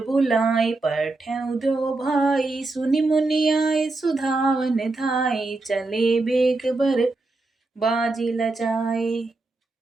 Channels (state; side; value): quieter; left; 3.3 dB